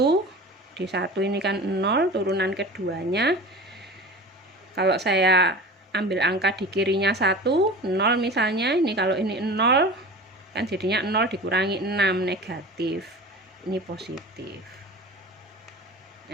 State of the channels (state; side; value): normal; both; correlation 0.35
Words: di 1 ini kan 0 turunan keduanya. Kalau saya ambil angka di kirinya 1, 0 misalnya, ini kalau ini 0 kan jadinya 0 dikurangi 6, negatif. Ini positif.